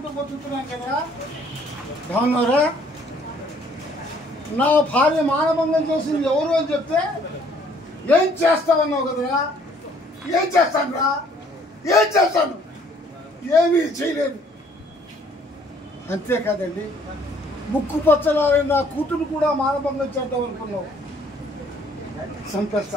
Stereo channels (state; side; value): normal; both; correlation 0.61